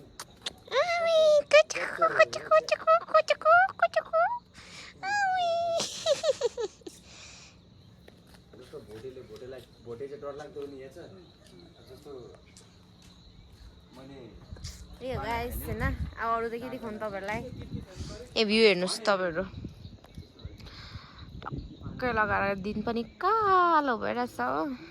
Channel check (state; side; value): identical; both; correlation 1.00